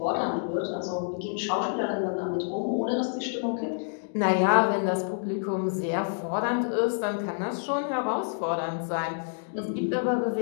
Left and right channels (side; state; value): right; silent; digital silence